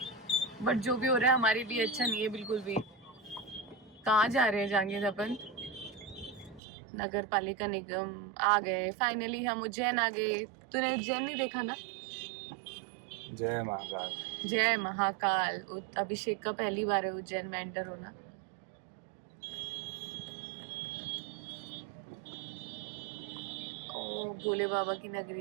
बट जो भी हो रहा है हमारे लिए अच्छा नहीं है बिल्कुल भी। कहाँ जा रहे हैं जांगिर अपन? नगर पालिका निगम आ गए फाइनली, हम उज्जैन आ गए। तूने उज्जैन नहीं देखा ना? जय महाकाल। जय महाकाल। अभिषेक का पहली बार है उज्जैन में एंटर होना। ओ भोले बाबा की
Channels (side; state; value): left; drops out; at 6.6 s